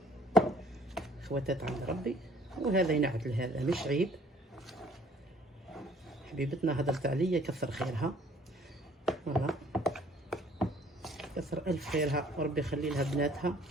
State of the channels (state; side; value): normal; both; correlation 0.56